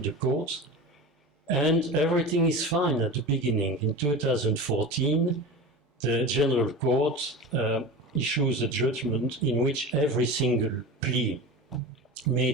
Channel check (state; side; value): normal; both; correlation 0.30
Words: the courts, and everything is fine at the beginning. In 2014, the General Court issues a judgment in which every single plea